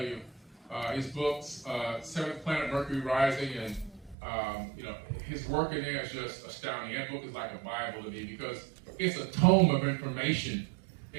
you. His books, Seventh Planet Mercury Rising, and his work in there is just astounding. That book is like a Bible to me because it's a tome of information,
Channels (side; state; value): left; drops out; at 4.2 s